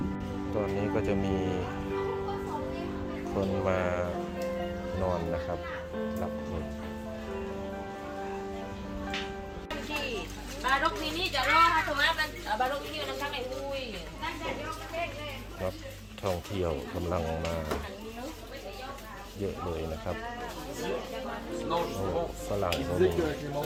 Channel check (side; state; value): both; identical; correlation 1.00